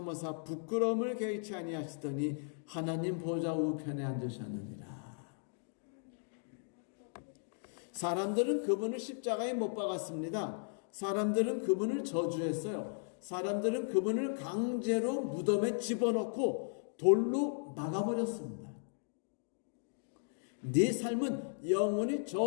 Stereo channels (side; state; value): right; silent; digital silence